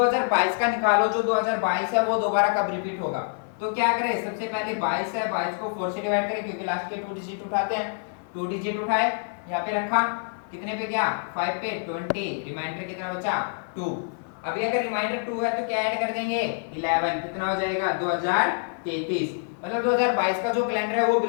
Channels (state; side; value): silent; right; 57 dB below the other